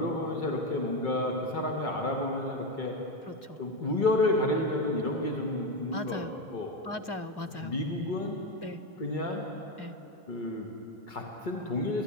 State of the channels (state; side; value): late; right; 2.3 ms